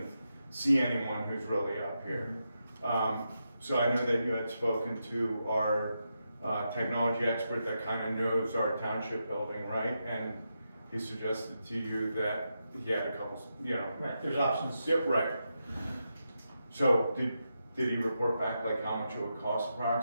see anyone who's really up here. So I know that you had spoken to our technology expert that kind of knows our township building, right? And he suggested to you that he had a couple, Right, there's options. Yep, right. So did he report back like how much it would cost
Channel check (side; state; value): both; inverted; correlation -0.86